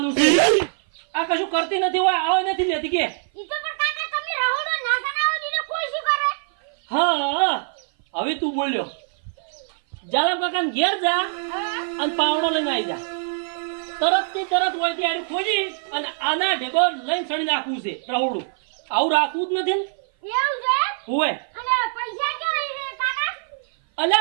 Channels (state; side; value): silent; left; 56 dB below the other